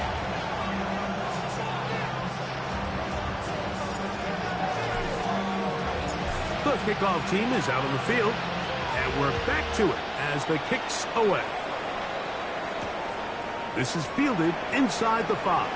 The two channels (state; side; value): identical; both; correlation 1.00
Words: The kickoff team is out on the field, and we're back to it as the kick's away. This is fielded inside the 5.